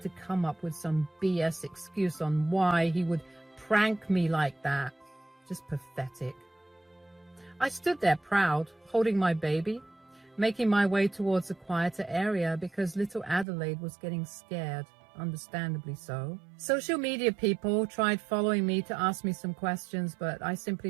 come up with some BS excuse on why he would prank me like that. Just pathetic. I stood there proud, holding my baby, making my way towards a quieter area because little Adelaide was getting scared. understandably so. Social media people tried following me to ask me some questions, but I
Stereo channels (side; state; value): left; drops out; at 13.5 s